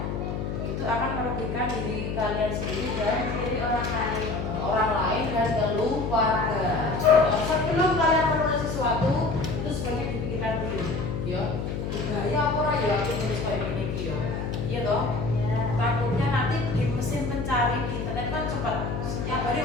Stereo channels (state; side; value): noise; left; hum, 3 dB below the sound